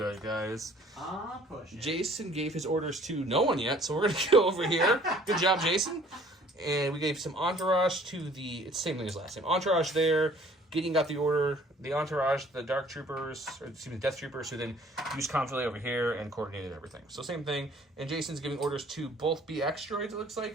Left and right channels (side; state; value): both; normal; correlation 0.55